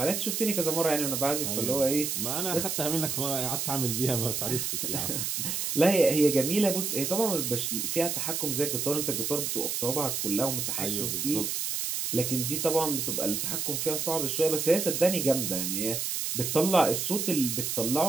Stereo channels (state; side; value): noise; right; hiss, 1 dB below the sound